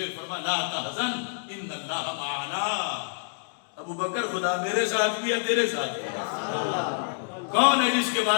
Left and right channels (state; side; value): silent; right; digital silence